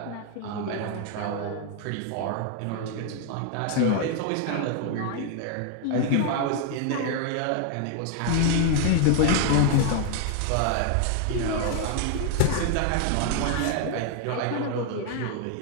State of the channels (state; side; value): different; both; correlation 0.00